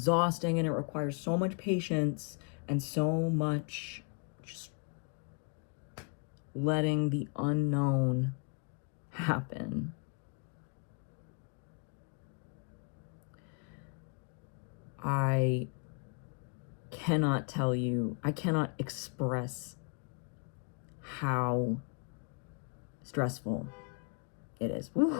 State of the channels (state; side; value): quieter; right; 34.8 dB